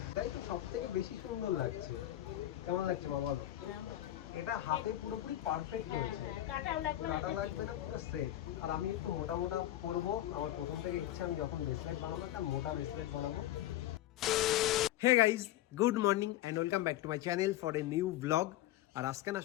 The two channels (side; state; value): right; quieter; 13.9 dB